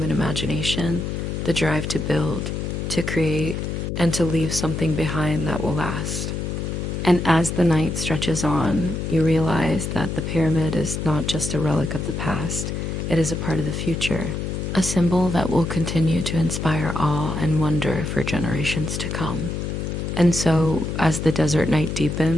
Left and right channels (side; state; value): left; noise; hum, 3 dB below the sound